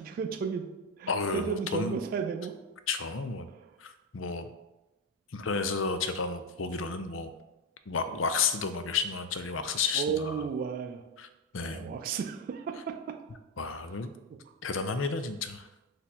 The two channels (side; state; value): both; normal; correlation 0.09